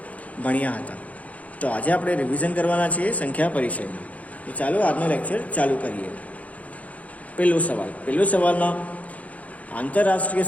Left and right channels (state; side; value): late; right; 0.069 ms